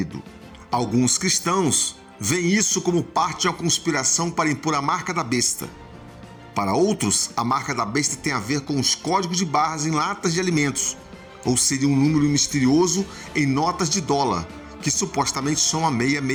Alguns cristãos veem isso como parte de uma conspiração para impor a marca da besta. Para outros, a marca da besta tem a ver com os códigos de barras em latas de alimentos, ou seria um número misterioso em notas de dólar, que supostamente são a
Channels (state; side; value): identical; both; correlation 1.00